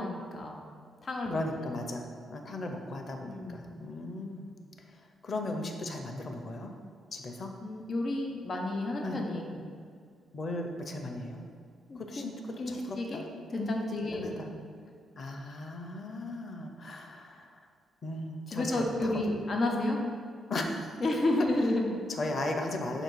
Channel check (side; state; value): both; normal; correlation 0.82